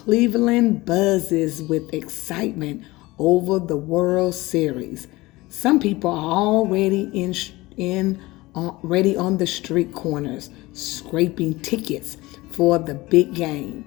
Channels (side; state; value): right; quieter; 20.4 dB